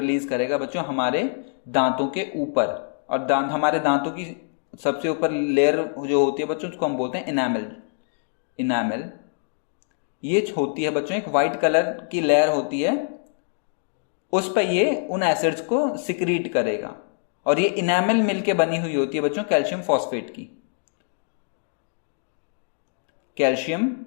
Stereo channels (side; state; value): right; silent; digital silence